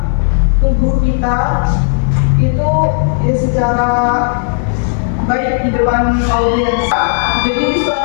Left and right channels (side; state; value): right; silent; 68 dB below the other